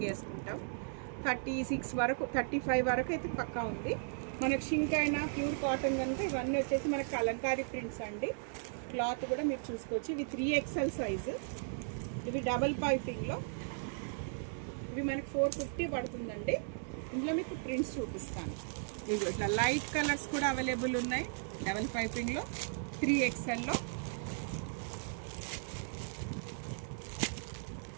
వేసుకుంటాం. 36 వరకు 35 వరకు అయితే పక్కా ఉంది. మనకు షింక్ అయినా ప్యూర్ కాటన్ కనుక ఇవన్నీ వచ్చేసి మనకి కలంకారీ ప్రింట్స్ అండి. క్లాత్ కూడా మీరు చూసుకోవచ్చు. ఇవి 3XL సైజు. ఇవి డబల్ పైపింగ్లో ఇవి మనకి 450 పడుతుందండి. ఇందులో మీకు ప్రింట్స్ చూపిస్తాను. ఇవి ఇట్లా లైట్ కలర్స్ కూడా అవైలబుల్ ఉన్నాయి డబల్ పైపింగ్లో 3XLలో.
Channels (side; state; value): left; silent; digital silence